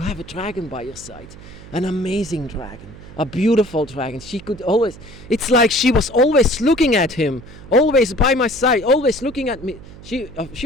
have a dragon by your side. An amazing dragon. A beautiful dragon. She could always... It's like she was always looking at him. Always by my side. Always looking at me.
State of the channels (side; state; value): right; noise; hum, 18 dB below the sound